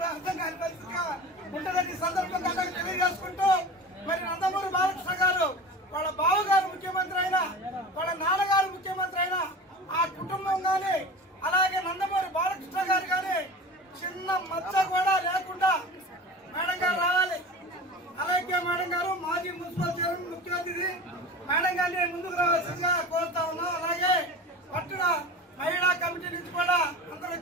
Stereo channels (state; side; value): normal; both; correlation 0.34